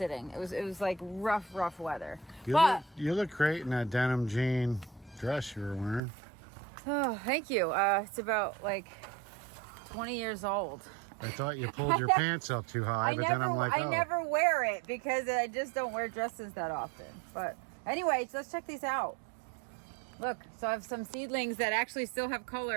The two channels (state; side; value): drops out; left; at 6.0 s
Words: It was like rough weather. You look great in that denim jean dress you were wearing. Oh, thank you. It's about like 20 years old. I thought you pulled your pants up too high, but then I'm like, oh. I never wear it because I just don't wear dresses that often. But anyways, let's check these out. Look, so I have some seedlings that actually still have